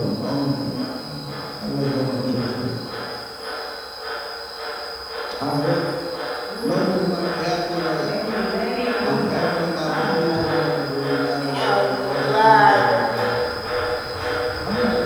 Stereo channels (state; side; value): identical; both; correlation 1.00